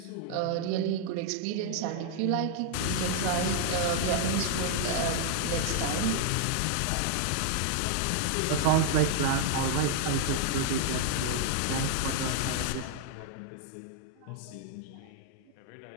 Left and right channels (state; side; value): different; both; correlation -0.01